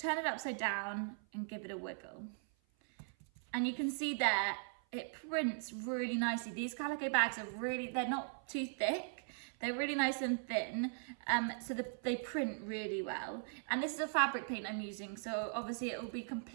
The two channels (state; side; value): silent; left; 52 dB below the other